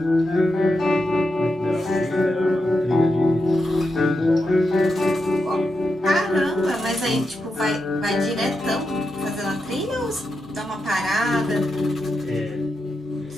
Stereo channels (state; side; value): normal; both; correlation 0.87